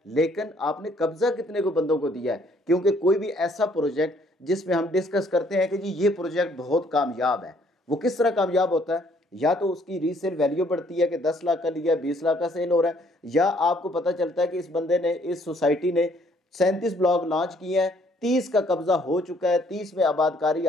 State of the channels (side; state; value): both; normal; correlation 0.64